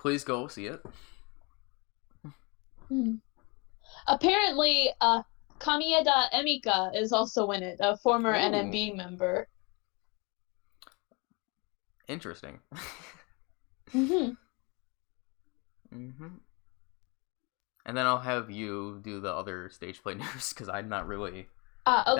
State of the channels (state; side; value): quieter; right; 29.7 dB